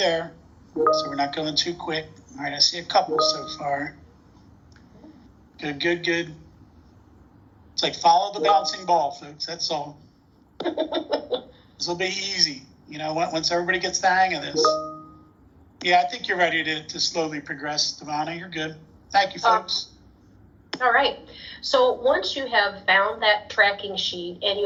so we're not going too quick. All right, I see a couple so far. Good. It's like follow the bouncing ball, folks. That's all. This will be easy, once everybody gets the hang of this. Yeah, I think you're ready to slowly progress, Devonna. You're good. Thank you, folks. All right. So once you have found that tracking sheet and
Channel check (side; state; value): both; identical; correlation 1.00